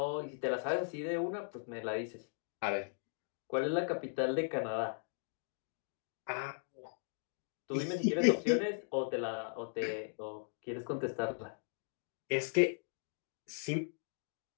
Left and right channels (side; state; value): right; silent; digital silence